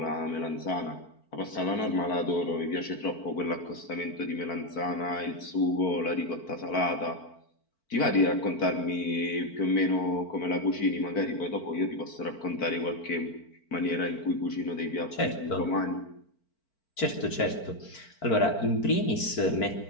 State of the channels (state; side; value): late; right; 4.5 ms